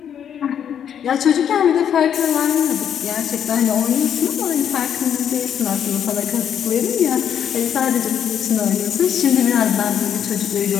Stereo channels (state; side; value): quieter; right; 8.9 dB